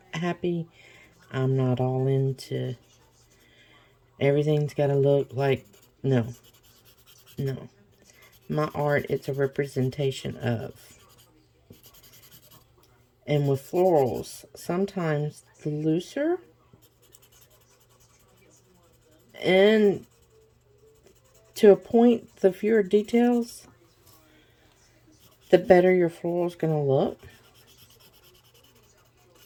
happy. I'm not all into everything's got to look like, no. My art, it's a representation of. And with florals, sometimes the looser and to a point, the fewer details, the better your floral is going to look.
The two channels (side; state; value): both; identical; correlation 1.00